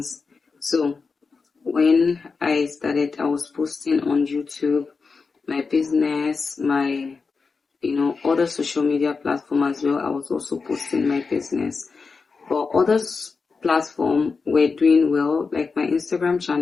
So when I started, I was posting on YouTube, my business, my, other social media platform as well. I was also posting my business. But other platform were doing well, like my Instagram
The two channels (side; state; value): right; quieter; 4.7 dB